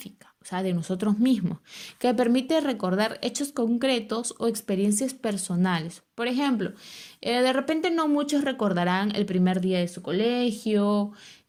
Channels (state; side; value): identical; both; correlation 1.00